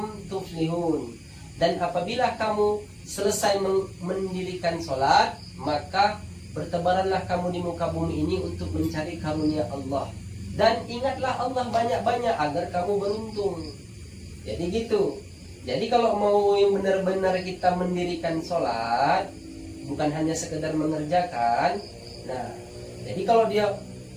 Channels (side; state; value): both; identical; correlation 1.00